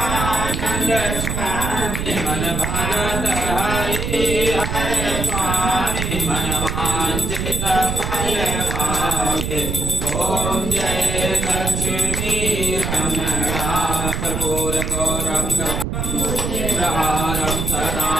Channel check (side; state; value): right; noise; rumble, 2 dB below the sound